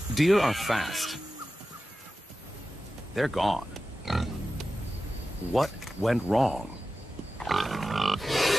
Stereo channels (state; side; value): normal; both; correlation 0.93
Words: Deer are fast. They're gone. What went wrong?